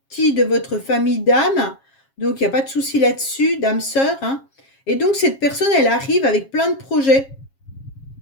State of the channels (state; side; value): late; right; 7.4 ms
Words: de votre famille d'âme, donc il n'y a pas de souci là-dessus, d'âme sœur, hein. Et donc cette personne, elle arrive avec plein de projets.